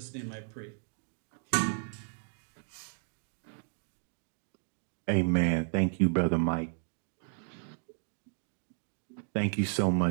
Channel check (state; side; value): silent; left; digital silence